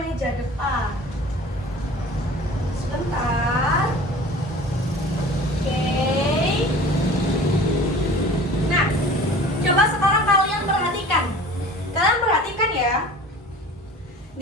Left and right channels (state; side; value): normal; both; correlation 0.42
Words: depan. Sebentar. Oke. Nah, coba sekarang kalian perhatikan. Kalian perhatikan ya.